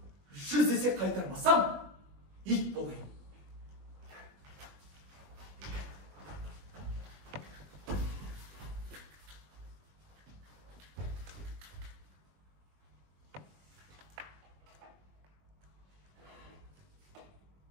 100 есе қайтармасам, ит болайын.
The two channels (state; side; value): late; left; 20 ms